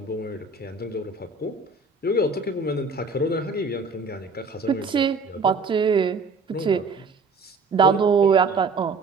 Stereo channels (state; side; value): quieter; left; 4.1 dB